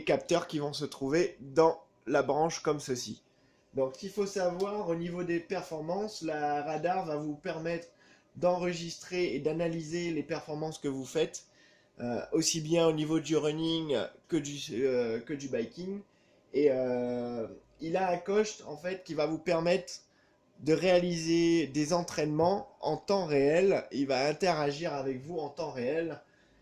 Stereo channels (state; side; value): identical; both; correlation 1.00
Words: capteurs qui vont se trouver dans la branche comme ceci. Donc il faut savoir au niveau des performances, la radar va vous permettre d'enregistrer et d'analyser les performances que vous faites. Aussi bien au niveau du running que du biking. Et il a un coach en fait qui va vous permettre de réaliser des entraînements en temps réel. Il va interagir avec vous en temps réel,